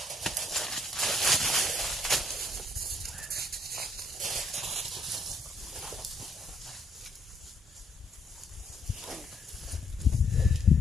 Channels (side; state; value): both; normal; correlation 0.68